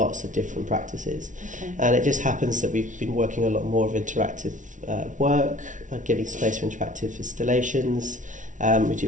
of different practices. Okay. And it just happens that we've been working a lot more of interactive work, giving space for interactive installations. We do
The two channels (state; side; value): late; left; 0.37 ms